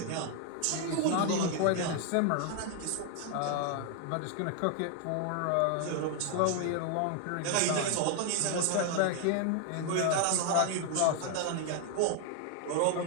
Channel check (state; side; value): different; both; correlation 0.00